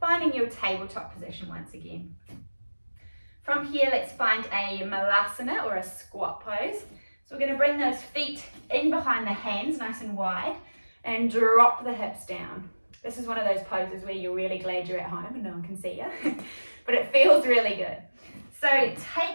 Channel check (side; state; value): both; inverted; correlation -1.00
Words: your tabletop position once again. From here, let's find a Malasana or a squat pose. So we're going to bring those feet in behind the hands, nice and wide, and drop the hips down. This is one of those poses where you're really glad you're at home and no one can see you, but it feels really good. So